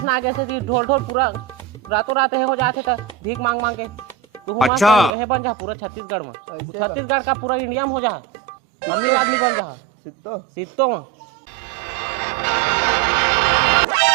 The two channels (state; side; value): drops out; left; at 5.2 s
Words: ना कैसे थी ढोल ढोल पूरा रातों रात है हो जाते था भीख मांग मांग के तू अच्छा है बन जा पूरा छत्तीसगढ़ में छत्तीसगढ़ का पूरा इंडिया में हो जा अमीर आदमी बन जा सित्तो